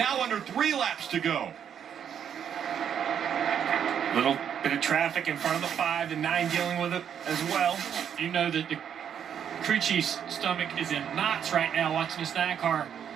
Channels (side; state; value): left; quieter; 8.5 dB